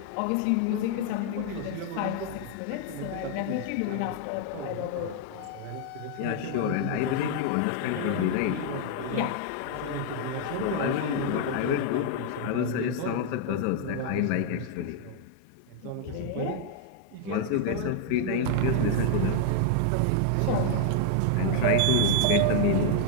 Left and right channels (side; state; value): both; different; correlation 0.00